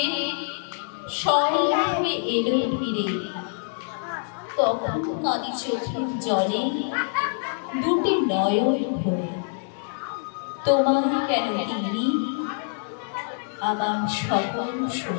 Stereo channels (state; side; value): silent; right; digital silence